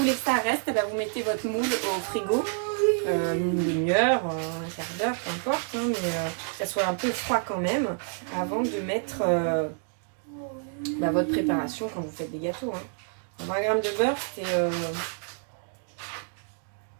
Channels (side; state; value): left; silent; 57 dB below the other